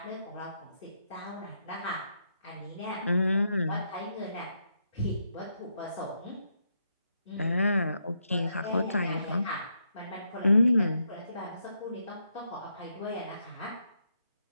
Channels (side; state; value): both; inverted; correlation -0.79